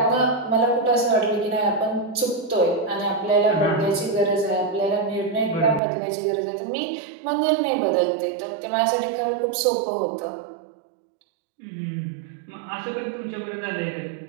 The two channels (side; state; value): left; drops out; at 5.8 s